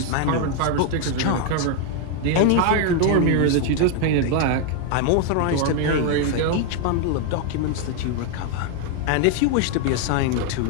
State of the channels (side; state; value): both; different; correlation 0.00